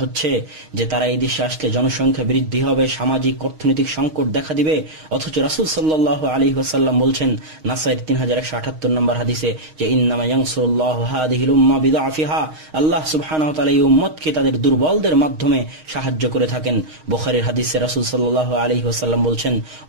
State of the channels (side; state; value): left; late; 6.4 ms